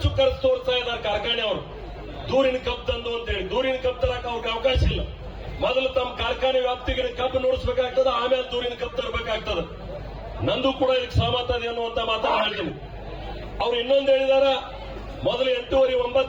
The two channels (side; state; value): both; identical; correlation 1.00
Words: ಖರ್ಚು ತೋರಿಸ್ತಾ ಇದ್ದಾರೆ ಕಾರ್ಖಾನೆಯವರು, ದೂರಿನ ಕಬ್ಬು ತಂದು ಅಂತೇಳಿ. ದೂರಿನ ಕಬ್ಬು ತರಕ ಅವ್ರಿಗೆ ಅವಕಾಶ ಇಲ್ಲ. ಮೊದಲು ತಮ್ಮ ಕಾರ್ಖಾನೆ ವ್ಯಾಪ್ತಿಗೆ ಕಬ್ಬು ನೋಡಿಸಬೇಕಾಗ್ತದೆ, ಆಮೇಲೆ ದೂರಿನ ಕಬ್ಬು ತರಬೇಕಾಗ್ತದೆ. ನಂದು ಕೂಡ ಇದಕ್ಕೆ ಸಹಮತ ಇದೆ ಅನ್ನುವಂತ ಮಾತನ್ನು ಹೇಳ್ತೀನಿ. ಅವ್ರು ಇನ್ನೊಂದು ಹೇಳಿದಾರ, ಮೊದಲು